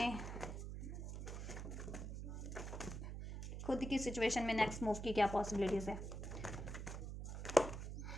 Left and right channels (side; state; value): right; noise; hum, 6 dB below the sound